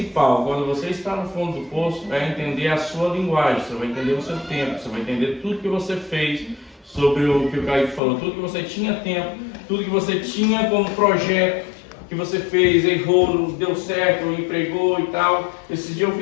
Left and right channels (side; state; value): right; drops out; at 8.0 s